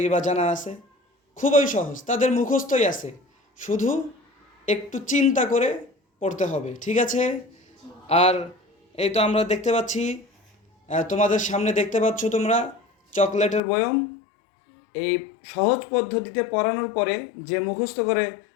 জানা আছে, খুবই সহজ, তাদের মুখস্থই আছে, শুধু একটু চিন্তা করে পড়তে হবে, ঠিক আছে? আর এই তো আমরা দেখতে পাচ্ছি, তোমাদের সামনে দেখতে পাচ্ছ তোমরা চকলেটের বয়ম। এই সহজ পদ্ধতিতে পড়ানোর পরে যে মুখস্থ করে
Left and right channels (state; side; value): drops out; right; at 13.6 s